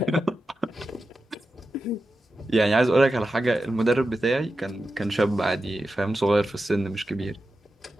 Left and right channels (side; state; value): both; normal; correlation 0.91